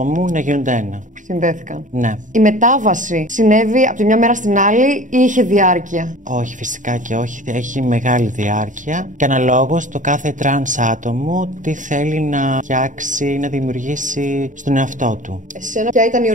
μου να γίνονται ένα. Συνδέθηκαν. Ναι. Η μετάβαση συνέβη από τη μια μέρα στην άλλη ή είχε διάρκεια? Όχι, φυσικά και όχι. Έχει μεγάλη διάρκεια. Και αναλόγως το κάθε τρανς άτομο τι θέλει να φτιάξει, να δημιουργήσει στον εαυτό του. Εσένα, ποια ήταν η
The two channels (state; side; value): late; left; 0.37 ms